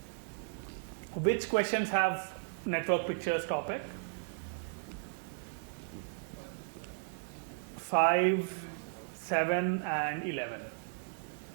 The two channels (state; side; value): silent; left; digital silence